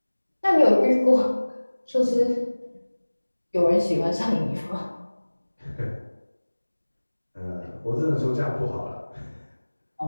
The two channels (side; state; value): both; inverted; correlation -1.00